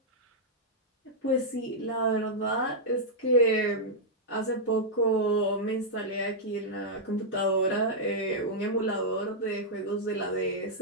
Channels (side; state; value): both; normal; correlation -0.08